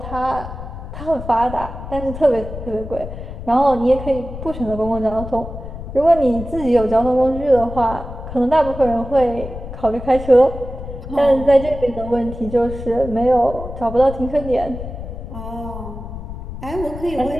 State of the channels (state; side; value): noise; left; rumble, 10 dB below the sound